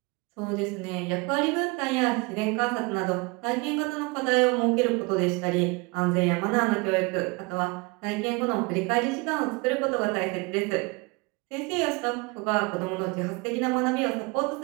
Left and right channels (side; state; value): left; quieter; 27.3 dB